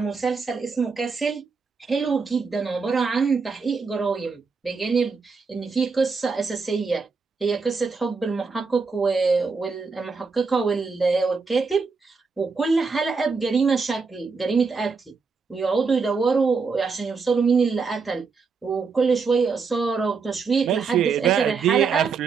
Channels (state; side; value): quieter; left; 4.9 dB